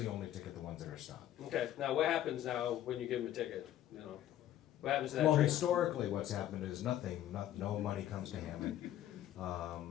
only ticket the ones that are stopped. Okay. Now, what happens now when you give them a ticket? What happens to that Well, train? historically, what's happened is nothing. No money comes to Hammond.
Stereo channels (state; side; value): quieter; right; 12.3 dB